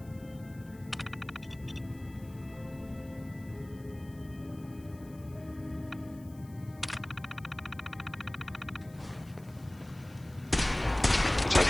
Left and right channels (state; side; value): noise; left; hiss, 25 dB below the sound